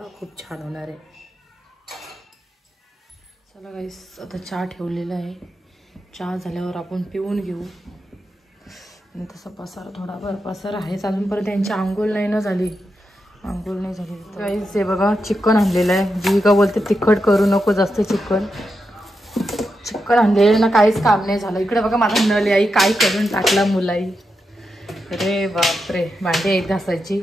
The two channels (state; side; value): normal; both; correlation 0.87